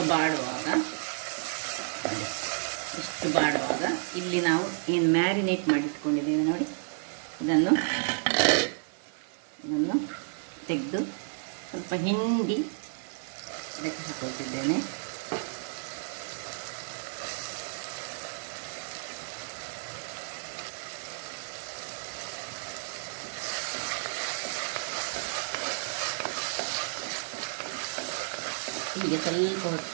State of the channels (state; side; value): silent; left; digital silence